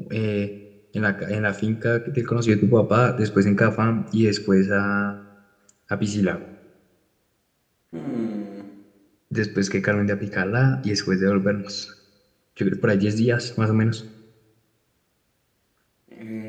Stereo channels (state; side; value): identical; both; correlation 1.00